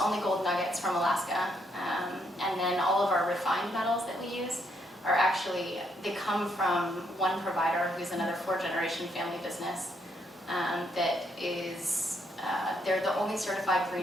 gold nuggets from Alaska, and then all of our refined metals that we use are actually, they come from one provider who's another 4th-generation family business that is, they're the only certified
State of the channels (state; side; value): normal; both; correlation 0.74